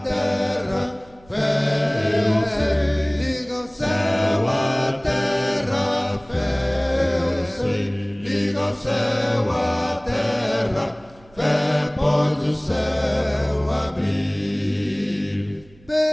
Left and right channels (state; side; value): noise; right; hum, 27 dB below the sound